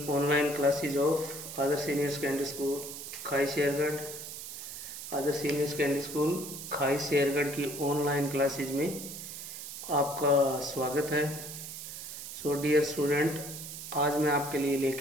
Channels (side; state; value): right; noise; hiss, 9 dB below the sound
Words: online classes of Other Senior Secondary School, खाई Shergarh. Other senior secondary school खाई शेरगढ़ की online classes में आपका स्वागत है। So dear student, आज मैं आपके लिए